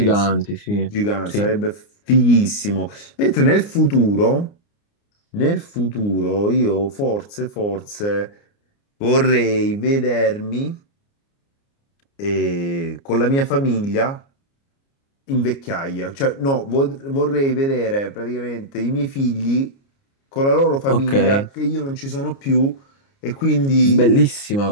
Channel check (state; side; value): late; right; 29 ms